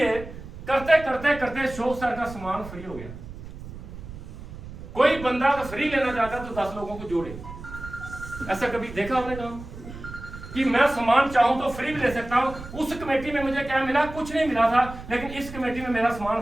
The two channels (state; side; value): noise; right; rumble, 13 dB below the sound